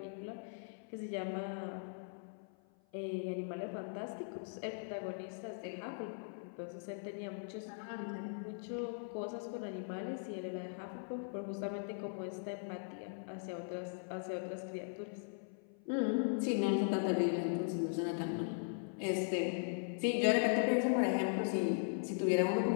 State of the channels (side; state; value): right; silent; 51 dB below the other